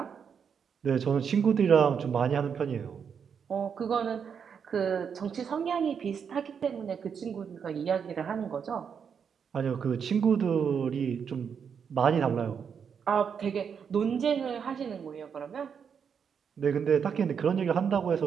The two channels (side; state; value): left; quieter; 7.0 dB